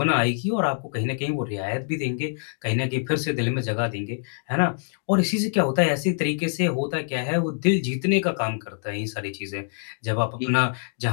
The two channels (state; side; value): silent; right; digital silence